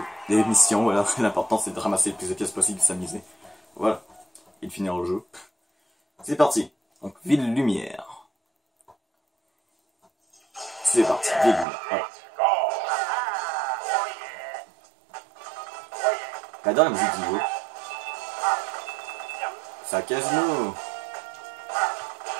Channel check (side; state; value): left; drops out; at 11.7 s